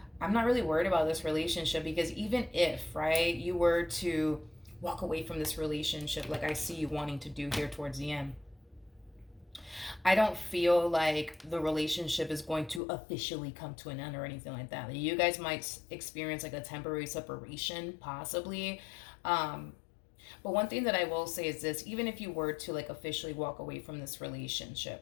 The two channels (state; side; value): drops out; right; at 12.8 s